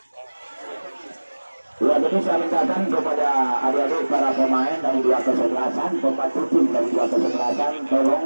Ya, jadi saya mintakan kepada adik-adik para pemain dari dua kesebelasan, pembantu tim dari dua kesebelasan,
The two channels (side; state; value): both; inverted; correlation -1.00